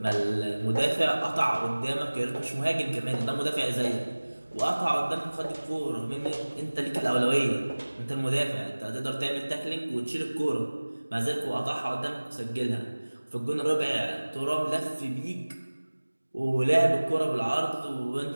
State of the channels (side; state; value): both; inverted; correlation -1.00